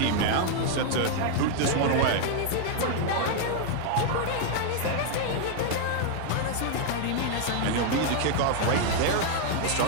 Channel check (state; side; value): different; both; correlation 0.00